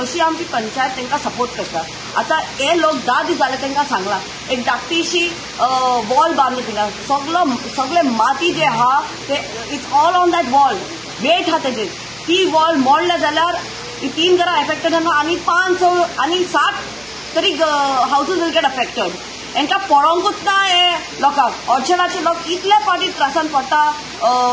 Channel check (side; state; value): right; noise; hum, 26 dB below the sound